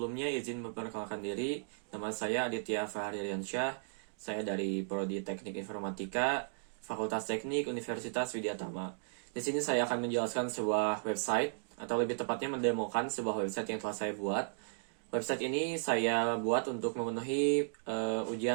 izin memperkenalkan diri. Nama saya Aditya Fahririansyah. Saya dari Prodi Teknik Informatika, Fakultas Teknik Universitas Widyatama. Di sini saya akan menjelaskan sebuah website, atau lebih tepatnya mendemokan sebuah website yang telah saya buat. Website ini saya buat untuk memenuhi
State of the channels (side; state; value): left; silent; digital silence